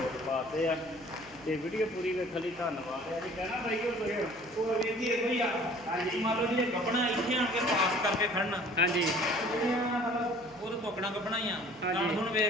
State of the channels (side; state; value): right; noise; hum, 25 dB below the sound